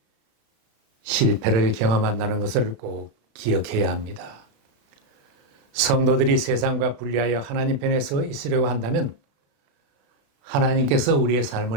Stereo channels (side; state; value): left; late; 35 ms